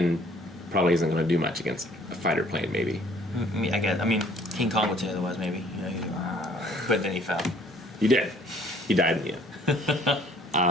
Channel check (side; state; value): both; normal; correlation 0.58